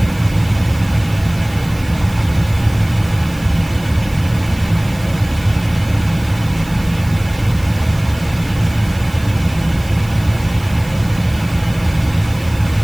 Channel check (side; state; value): right; noise; hiss, 20 dB below the sound